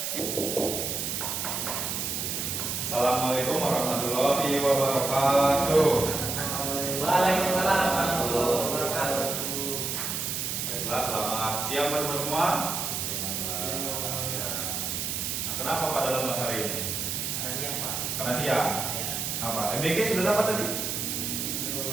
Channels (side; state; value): right; noise; hiss, 2 dB below the sound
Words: Assalamualaikum warahmatullahi wabarakatuh. Waalaikumsalam warahmatullahi wabarakatuh. Baiklah, selamat siang teman-teman semua. Ya. Nah, kenapa pada lemas hari ini? Karena siang, Pak. Karena siang. Ya. Apa? MBG sudah dapat tadi?